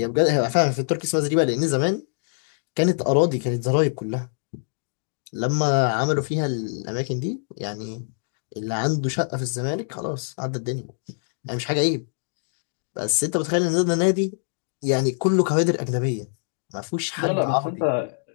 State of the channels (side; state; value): right; silent; digital silence